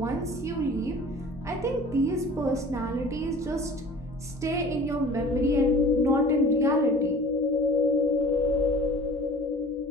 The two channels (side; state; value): both; normal; correlation 0.44